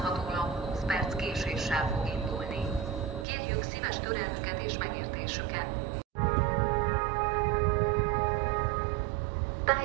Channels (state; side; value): drops out; left; at 3.2 s